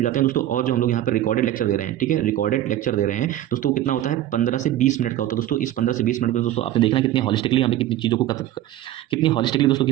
जाते हैं दोस्तों। और जो हम लोग यहाँ पे रिकॉर्डेड लेक्चर दे रहे हैं, ठीक है, रिकॉर्डेड लेक्चर दे रहे हैं दोस्तों, कितना होता है, 15 से 20 मिनट का होता है दोस्तों। इस 15 से 20 मिनट में दोस्तों आपने देखना कितनी हॉलिस्टिकली यहाँ पे कितनी चीज़ों को कितनी हॉलिस्टिकली दोस्तों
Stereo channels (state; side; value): quieter; left; 13.2 dB